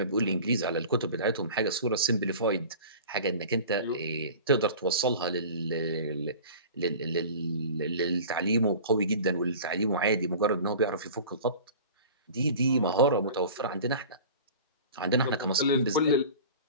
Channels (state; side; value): inverted; both; correlation -0.39